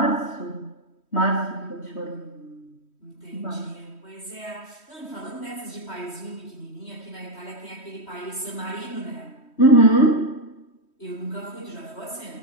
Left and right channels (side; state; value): right; late; 3.1 ms